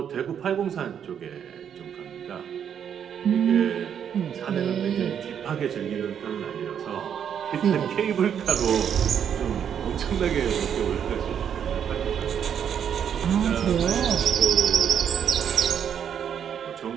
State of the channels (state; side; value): quieter; left; 8.4 dB